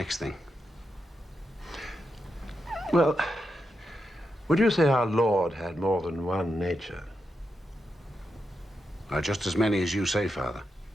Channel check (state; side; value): normal; both; correlation 0.86